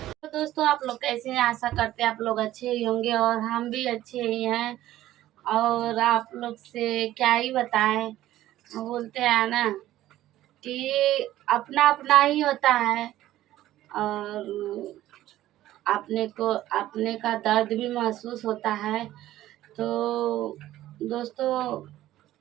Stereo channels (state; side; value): quieter; left; 14.3 dB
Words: दोस्तों आप लोग कैसे हैं? आशा करते हैं आप लोग अच्छे ही होंगे और हम भी अच्छे ही हैं। और आप लोग से क्या ही बताएं, बोलते हैं ना कि अपना अपना ही होता है और अपने का दर्द भी महसूस होता है। तो दोस्तों